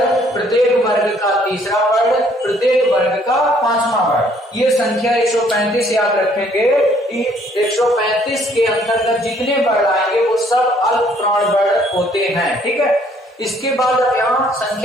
प्रत्येक वर्ग का तीसरा वर्ण, प्रत्येक वर्ग का पांचवा वर्ण। ये संख्या 135 याद रखेंगे। 135 के अंतर्गत जितने वर्ण आएंगे वो सब अल्प प्राण वर्ण होते हैं। ठीक है, इसके बाद यहाँ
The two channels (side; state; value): both; normal; correlation 0.63